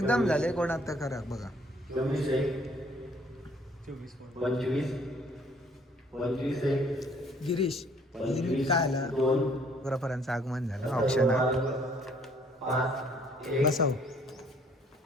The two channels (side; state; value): both; normal; correlation 0.61